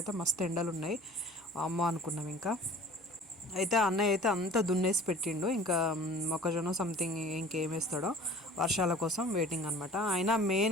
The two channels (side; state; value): both; normal; correlation 0.46